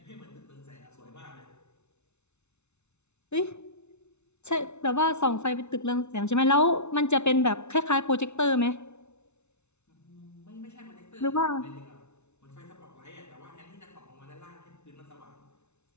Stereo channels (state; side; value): late; right; 0.82 ms